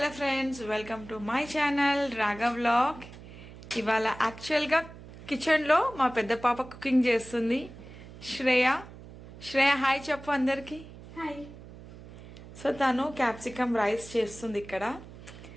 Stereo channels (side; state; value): right; noise; hum, 17 dB below the sound